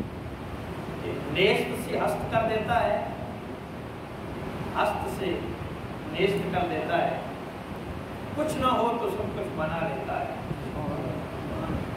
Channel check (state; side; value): identical; both; correlation 1.00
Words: کہ نیست سے ہست کر دیتا ہے، ہست سے نیست کر دیتا ہے، کچھ نہ ہو تو سب کچھ بنا لیتا ہے۔